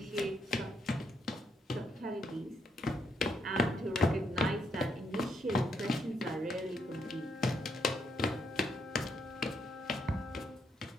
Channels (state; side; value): normal; both; correlation 0.76